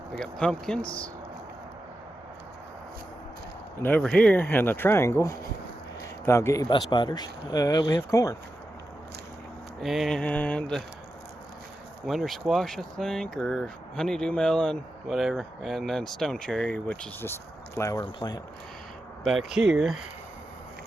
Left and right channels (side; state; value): both; normal; correlation 0.90